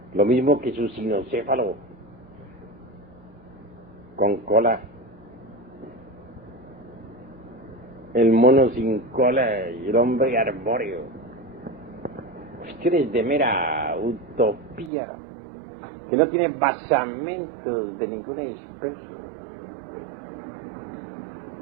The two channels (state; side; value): drops out; left; at 14.9 s